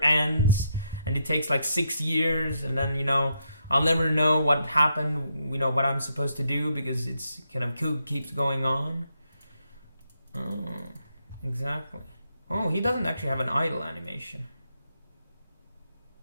ends and it takes like 6 years and then, you know, I'll never know what happened, you know, what I'm supposed to do because it's kind of keeps going on. Oh, exactly. Oh, he doesn't actually have an idle animation.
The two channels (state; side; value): inverted; both; correlation -0.80